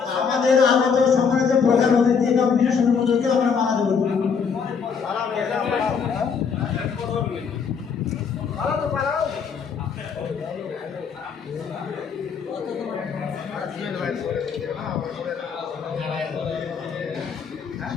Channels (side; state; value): right; quieter; 6.1 dB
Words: আমাদের আগত সম্মানিত প্রধান অতিথি এবং বিশেষ অনুমোদনকে আমরা মানা দেব।